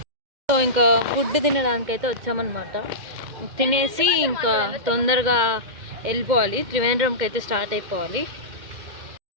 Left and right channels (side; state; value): left; late; 2.1 ms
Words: సో ఇంకా ఫుడ్ తినడానికి అయితే వచ్చామన్నమాట. తినేసి ఇంకా తొందరగా వెళ్ళిపోవాలి, త్రివేంద్రంకి అయితే స్టార్ట్ అయిపోవాలి.